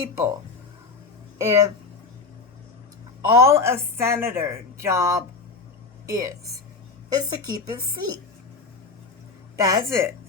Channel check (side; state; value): right; quieter; 4.4 dB